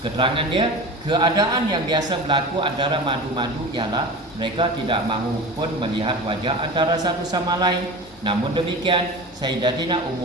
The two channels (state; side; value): normal; both; correlation 0.32